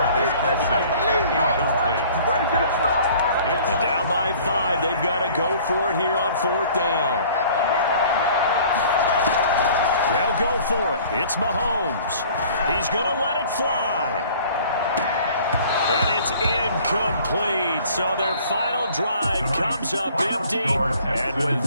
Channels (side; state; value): both; inverted; correlation -0.51